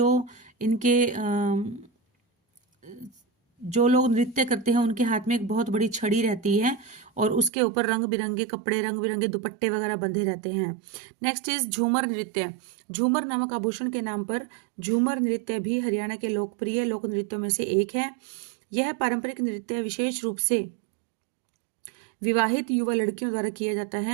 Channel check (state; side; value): drops out; left; at 7.5 s